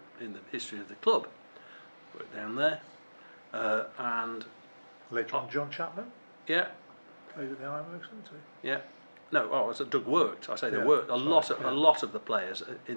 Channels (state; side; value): inverted; both; correlation -1.00